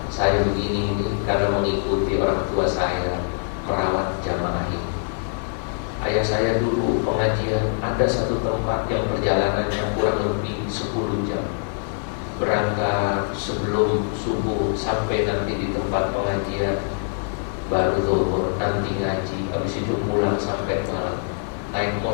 saya begini ini karena mengikuti orang tua saya merawat jamaah ini. Ayah saya dulu pengajian, ada satu tempat yang perjalanannya kurang lebih 10 jam. Berangkat sebelum subuh sampai nanti di tempat pengajian, baru zuhur, nanti ngaji, habis itu pulang sampai malam. Naik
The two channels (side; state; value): right; silent; digital silence